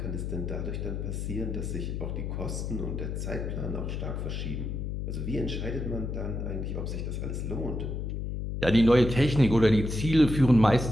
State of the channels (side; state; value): left; noise; hum, 4 dB below the sound